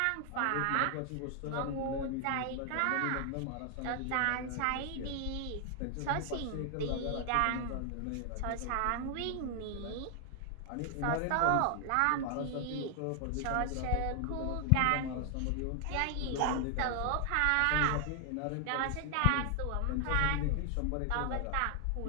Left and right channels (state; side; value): different; both; correlation 0.00